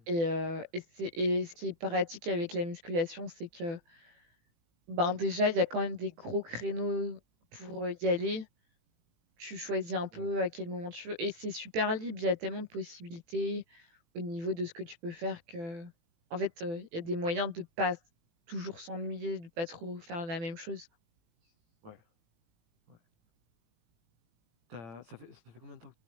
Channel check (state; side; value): late; left; 18 ms